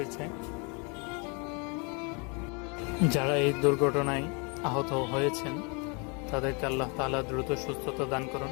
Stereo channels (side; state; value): right; quieter; 32.8 dB